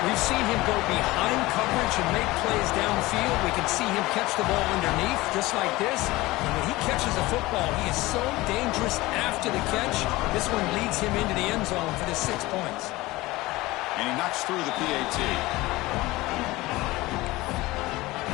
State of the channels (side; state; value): right; quieter; 19.7 dB